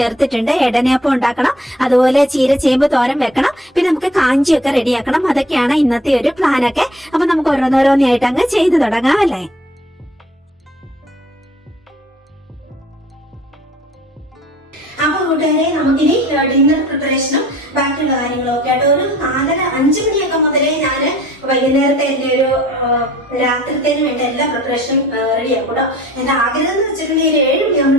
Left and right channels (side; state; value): both; normal; correlation 0.56